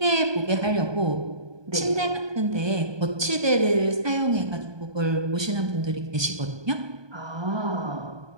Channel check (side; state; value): left; late; 1.2 ms